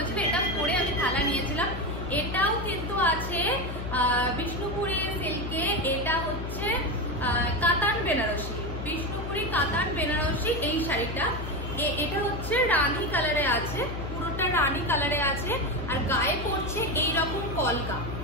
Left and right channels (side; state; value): left; noise; hum, 6 dB below the sound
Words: এটা পরে আমি থালা নিয়েছিলাম। এটাও কিন্তু আছে বিষ্ণুপুরি সিল্কে। এটা হচ্ছে কাতান বেনারসি, বিষ্ণুপুরি কাতান বেনারসি এই শাড়িটা। এটা হচ্ছে রানী কালারে আছে, পুরোটা রানী কালারে আছে। আর গায়ে পড়ছে এইরকম কলকা,